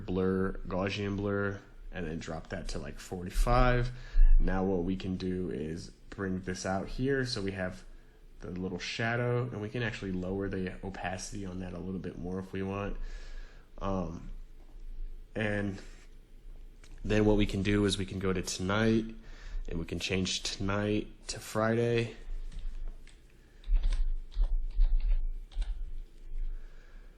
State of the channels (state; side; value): identical; both; correlation 1.00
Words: Gaussian blur, and then drop that to like 45. Now what we can do is bring this out here so we have the little shadow, and we can actually lower the opacity on that a little bit more if we want. And then what we can do is we can go to tonight, and we can change tonight to Friday.